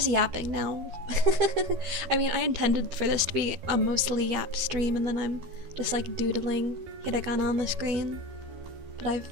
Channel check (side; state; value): left; late; 13 ms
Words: yapping now. I mean, I intended for this to be a mostly yap stream, and then I'm just like doodling hiragana on the screen. But